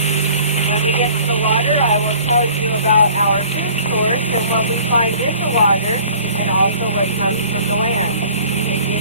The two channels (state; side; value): inverted; both; correlation -0.50